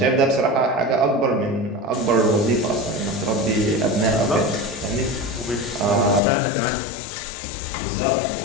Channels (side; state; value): right; drops out; at 6.2 s